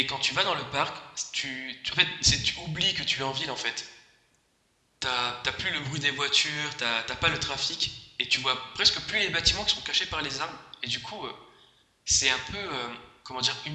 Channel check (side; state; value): both; identical; correlation 1.00